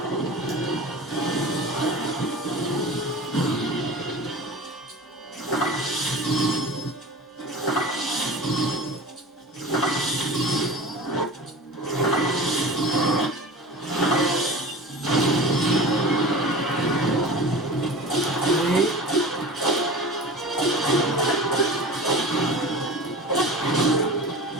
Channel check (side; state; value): both; normal; correlation 0.35